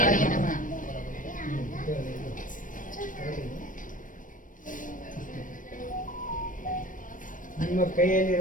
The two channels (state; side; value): late; right; 0.38 ms